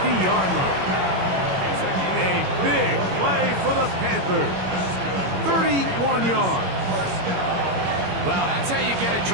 line. A big play for the Panthers. 31 yards. Well, that's how you get a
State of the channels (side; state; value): left; late; 21 ms